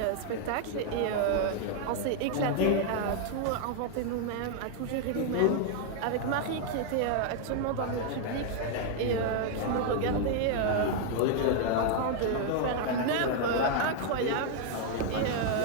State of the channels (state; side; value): different; both; correlation 0.00